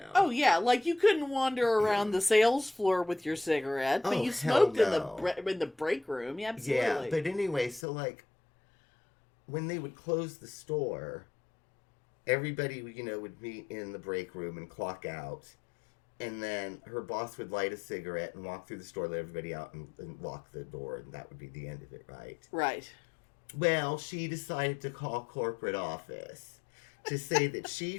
Oh, yeah. You couldn't wander around the sales floor with your cigarette, but you smoked in the break room. Yeah, absolutely. Yeah, but anyway, so, when they would close the store, everybody, would meet in the break room and clock out. And then her boss would light a cigarette and walk through the store, let everybody out, and lock the door, and that would be the end of it, right? Right. Well, she decided to call corporate office to say that she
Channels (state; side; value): drops out; right; at 7.9 s